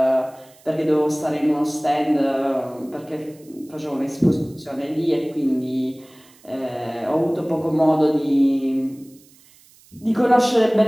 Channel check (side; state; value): right; noise; hiss, 28 dB below the sound